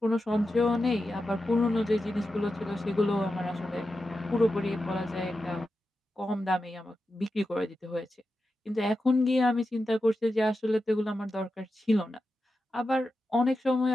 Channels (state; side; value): normal; both; correlation 0.90